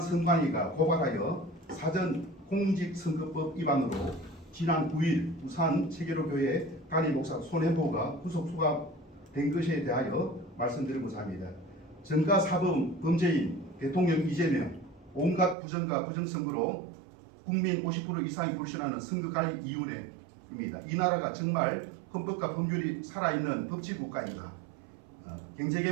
선관위가 고발하여 사전 공직선거법 위반으로 지난 9일 부산 체계로교회 담임 목사 손혜보가 구속 수감된 것에 대하여 말씀드리고자 합니다. 전가 사범 범죄인 대통령 이재명, 온갖 부정과 부정선거로 국민 50% 이상이 불신하는 선거관리위원회입니다. 이 나라가 정말 헌법과 법률이 살아있는 법치국가입니다.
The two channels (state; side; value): drops out; left; at 15.6 s